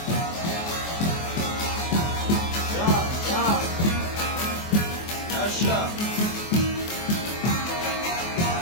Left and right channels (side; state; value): right; late; 24 ms